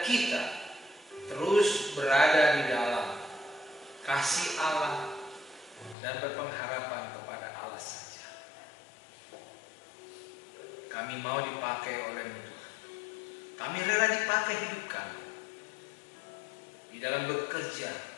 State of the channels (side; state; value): right; drops out; at 6.0 s